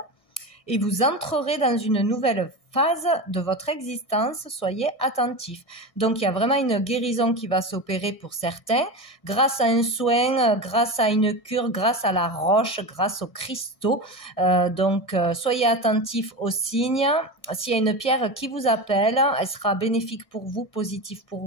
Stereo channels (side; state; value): right; late; 1.6 ms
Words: et vous entrerez dans une nouvelle phase de votre existence. Soyez attentifs. Donc, il y a vraiment une guérison qui va s'opérer pour certains grâce à un soin, grâce à une cure, grâce à la roche, grâce aux cristaux. Donc, soyez attentifs aux signes. S'il y a une pierre qui vous appelle, elle sera bénéfique pour vous, positive